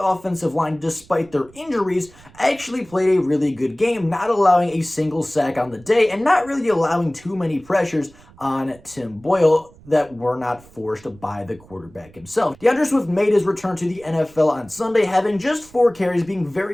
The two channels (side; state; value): right; noise; rumble, 25 dB below the sound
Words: offensive line, despite their injuries, actually played a really good game, not allowing a single sack on the day and not really allowing too many pressures on Tim Boyle that were not forced by the quarterback himself. DeAndre Swift made his return to the NFL on Sunday, having just 4 carries, being